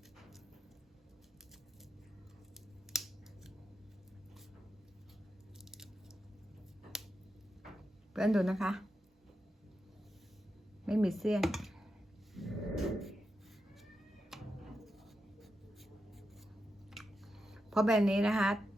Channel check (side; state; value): both; normal; correlation 0.87